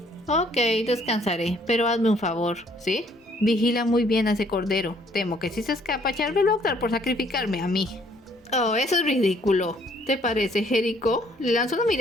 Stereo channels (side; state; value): both; normal; correlation 0.63